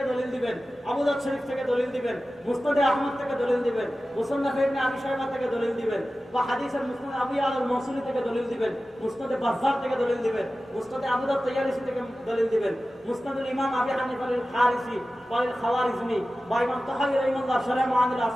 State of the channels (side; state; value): both; normal; correlation 0.95